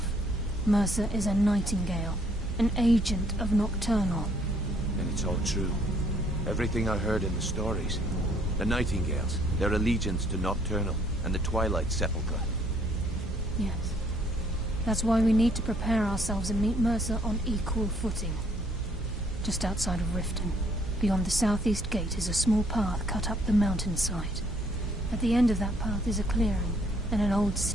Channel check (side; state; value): right; noise; hum, 8 dB below the sound